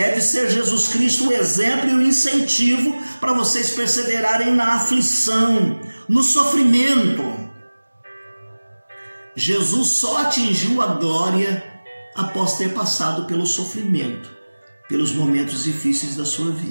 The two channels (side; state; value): both; inverted; correlation -1.00